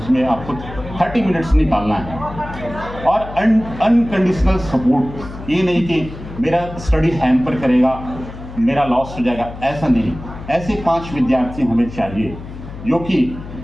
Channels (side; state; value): left; noise; hum, 13 dB below the sound